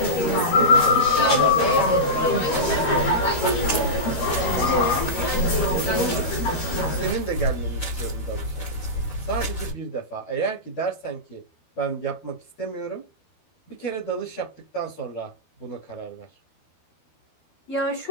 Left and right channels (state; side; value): late; right; 12 ms